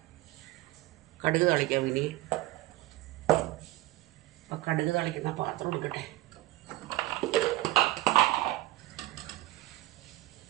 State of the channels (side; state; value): left; quieter; 17.3 dB